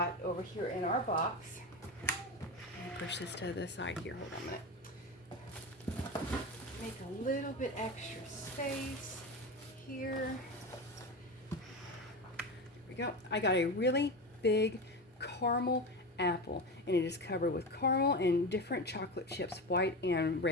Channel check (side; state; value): both; normal; correlation 0.22